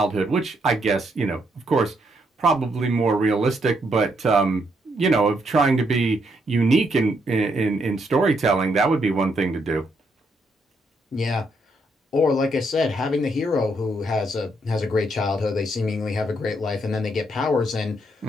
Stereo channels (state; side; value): normal; both; correlation 0.75